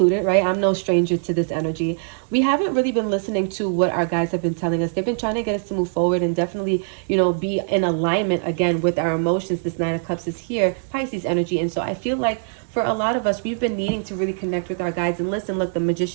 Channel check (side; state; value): left; silent; digital silence